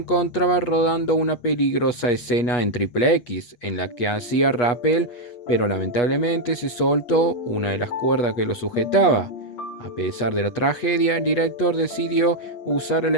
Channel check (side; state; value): right; late; 8.3 ms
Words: rodando una peligrosa escena en Triple X, en la que hacía rappel, pero lamentablemente se soltó una de las cuerdas que lo sujetaba. A pesar de la tragedia, el director decidió usar